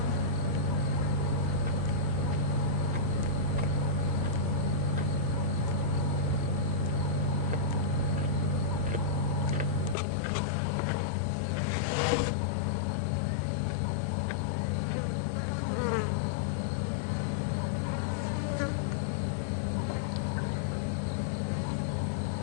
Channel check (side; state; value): right; drops out; at 10.0 s